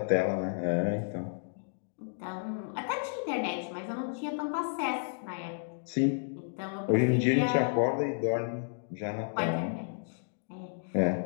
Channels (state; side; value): silent; right; digital silence